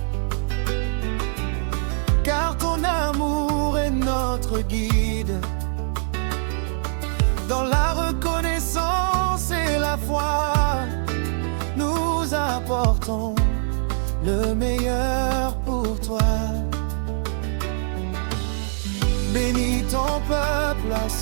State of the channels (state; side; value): silent; left; 57 dB below the other